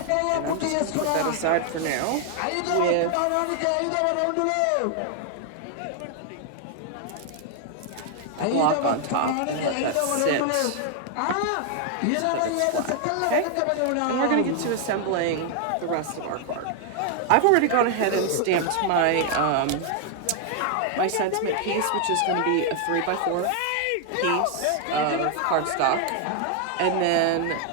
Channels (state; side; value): different; both; correlation 0.00